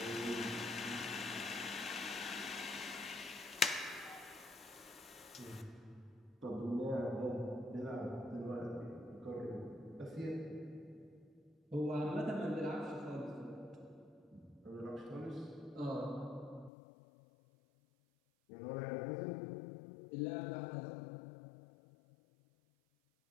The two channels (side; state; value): right; drops out; at 16.7 s